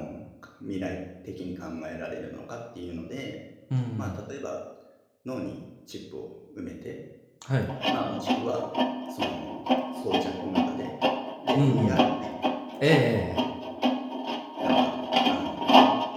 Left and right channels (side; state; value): both; identical; correlation 1.00